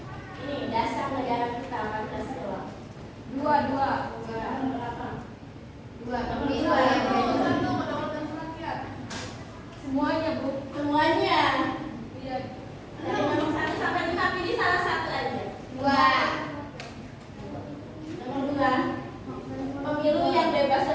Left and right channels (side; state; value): both; identical; correlation 1.00